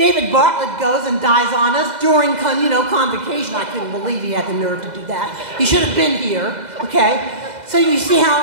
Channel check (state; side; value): late; left; 2.0 ms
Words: Bartlett goes and dies on us during convocation. I couldn't believe he had the nerve to do that. He should have been here, okay? So you see